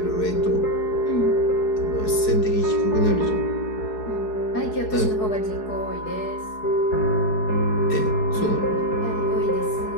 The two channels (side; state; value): right; late; 4.7 ms